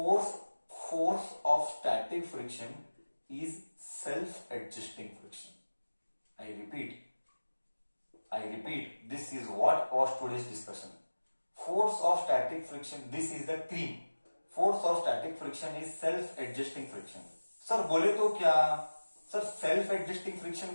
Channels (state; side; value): inverted; both; correlation -1.00